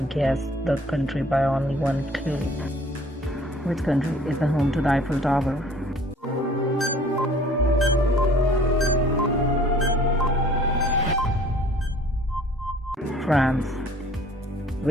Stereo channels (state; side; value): normal; both; correlation 0.53